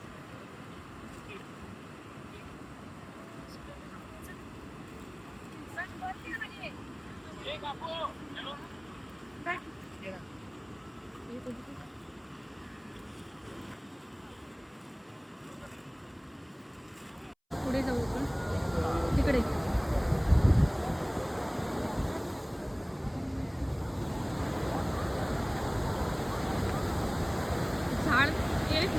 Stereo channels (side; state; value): both; identical; correlation 1.00